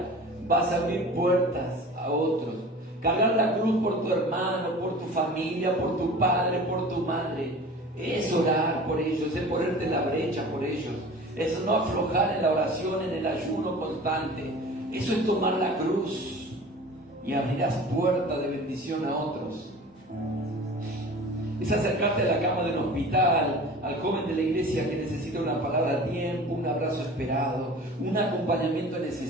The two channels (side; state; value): both; normal; correlation 0.40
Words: vas a abrir puertas a otros. Cargar la cruz por tu hermano, por tu familia, por tu padre, por tu madre, es orar por ellos, es ponerte en la brecha por ellos. Es no aflojar en la oración, en el ayuno constante. Eso es tomar la cruz. y abrirás puerta de bendición a otros. Es acercarte a la cama del hospital, al joven de la iglesia que necesita una palabra a tiempo, un abrazo esperado, un acompañamiento